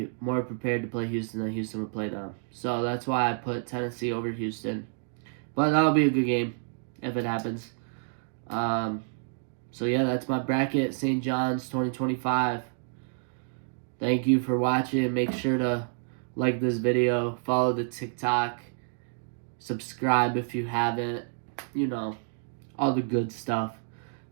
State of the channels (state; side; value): silent; left; digital silence